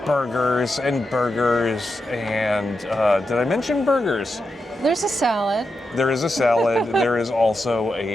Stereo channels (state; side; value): normal; both; correlation 0.87